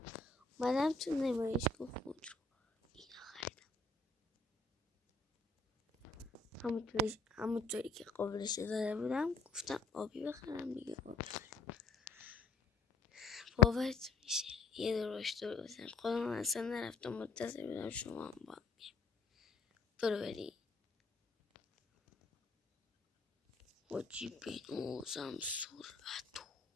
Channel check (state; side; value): quieter; right; 4.1 dB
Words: اومدم تو نمایشگاه خود رو اینا خریدم. همونطوری که قابلش داده بودم گفتم آبی بخرم دیگه. آبی خریدم. باورت میشه یه دورش دور بزن خودم اصلا نرفتم منتظر بودم شما هم با هم برو بری حاجی بینوزم سرعتو